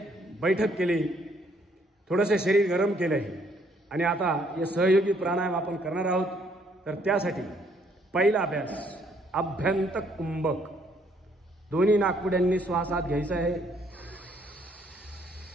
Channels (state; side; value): normal; both; correlation 0.67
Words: बैठक केली, थोडेसे शरीर गरम केले आहे आणि आता हे सहयोगी प्राणायाम आपण करणार आहोत। तर त्यासाठी पहिला अभ्यास अभ्यंत कुंभक। दोन्ही नाकपुड्यांनी श्वास आत घ्यायचा आहे,